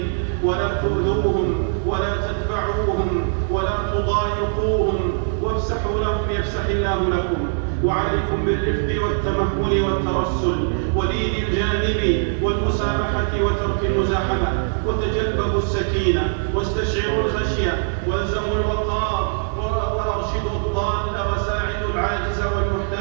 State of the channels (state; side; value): silent; left; digital silence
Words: ولا تؤذوهم ولا تدفعوهم ولا تضايقوهم، وافسحوا لهم يفسح الله لكم. وعليكم بالرفق والتمهل والترسل ولين الجانب والمسامحة وترك المزاحمة، وتجلبوا السكينة واستشعروا الخشية، والزموا الوقار، وأرشدوا الضال وساعدوا العاجز